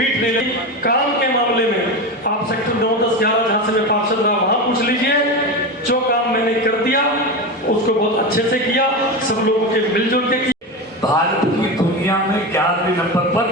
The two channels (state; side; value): normal; both; correlation 0.20